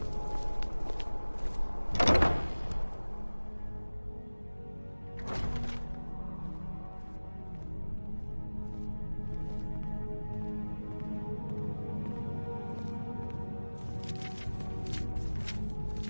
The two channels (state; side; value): inverted; both; correlation -1.00